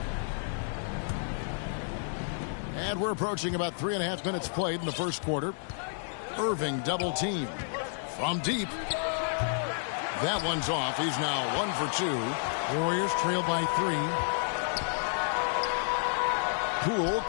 And we're approaching about 3.5 minutes played in the first quarter. Irving double team from deep. That one's off. He's now 1 for 2. Warriors trail by 3. Poole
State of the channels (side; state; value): right; silent; digital silence